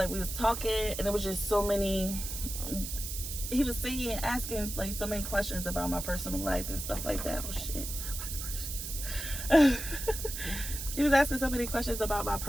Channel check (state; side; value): noise; right; hiss, 6 dB below the sound